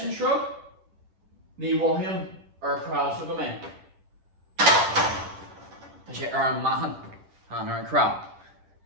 shrug, ni him crowd him in. To say mahan, and crowd.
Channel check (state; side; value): late; left; 10 ms